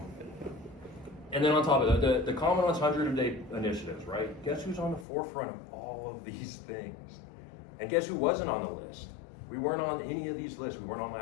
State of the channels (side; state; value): right; drops out; at 5.1 s